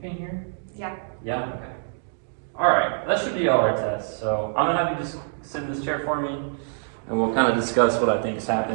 here? Yeah. Yeah? Okay. Alright, that should be all our tests. So I'm going to have you just sit in this chair for me, and we'll kind of discuss what I think is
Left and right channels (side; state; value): left; silent; digital silence